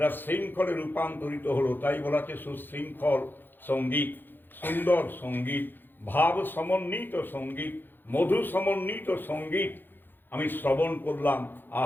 শৃঙ্খলে রূপান্তরিত হলো। তাই বলা হচ্ছে সুশৃঙ্খল সঙ্গীত, সুন্দর সঙ্গীত, ভাব সমন্বিত সঙ্গীত, মধু সমন্বিত সঙ্গীত আমি শ্রবণ করলাম।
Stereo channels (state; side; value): late; right; 0.095 ms